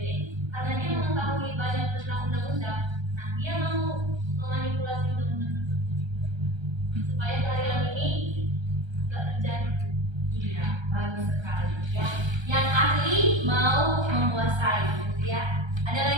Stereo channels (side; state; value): left; late; 1.3 ms